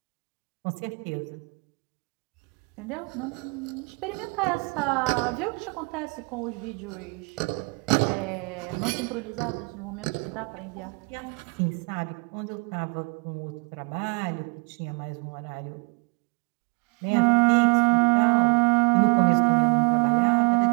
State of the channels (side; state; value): left; quieter; 32.6 dB